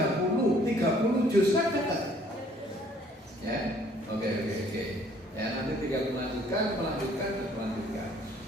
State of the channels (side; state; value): both; normal; correlation 0.60